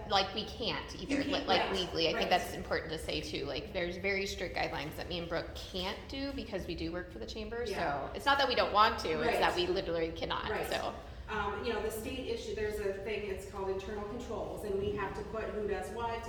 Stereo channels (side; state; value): both; identical; correlation 1.00